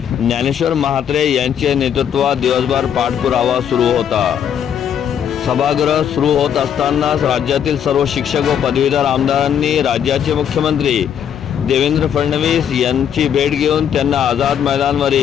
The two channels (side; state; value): right; quieter; 8.8 dB